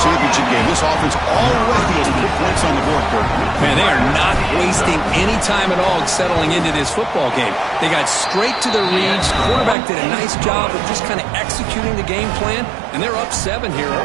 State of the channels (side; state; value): left; drops out; at 9.8 s